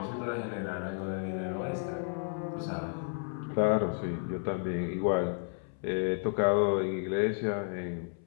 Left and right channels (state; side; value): silent; right; 56 dB below the other